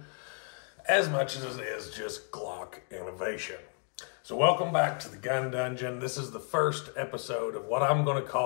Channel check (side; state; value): right; quieter; 39.4 dB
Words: as much as it is just Glock innovation. So welcome back to the Gun Dungeon. This is the first episode of what I'm going to